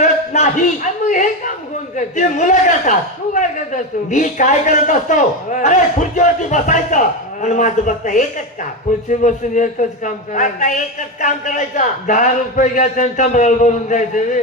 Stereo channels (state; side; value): normal; both; correlation 0.15